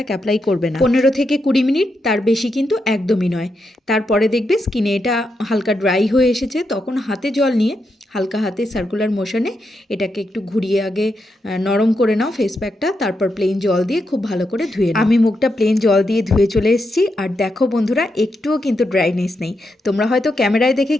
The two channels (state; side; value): normal; both; correlation 0.84